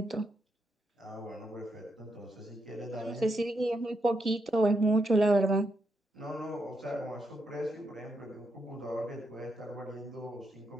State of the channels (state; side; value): normal; both; correlation 0.81